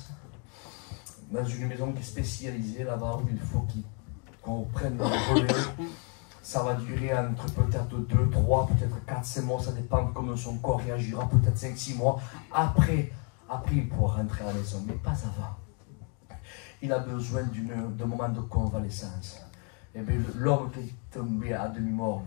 Dans une maison qui est spécialisée là-bas, où il faut qu'on prenne le relais. Ça va durer entre peut-être 2, 3, peut-être 4, 5 mois, ça dépend de comment son corps réagira, peut-être 5, 6 mois. Après, il pourra rentrer à la maison, mais pas avant. Il a besoin d'un moment de convalescence. Et bien, l'homme qui est tombé à demi-mort,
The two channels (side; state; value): right; quieter; 37.3 dB